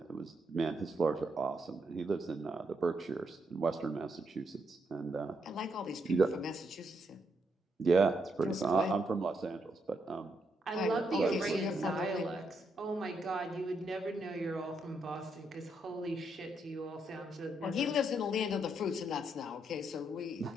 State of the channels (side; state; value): both; normal; correlation 0.78